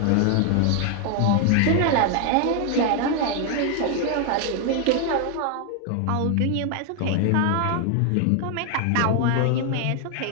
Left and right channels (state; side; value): different; both; correlation 0.00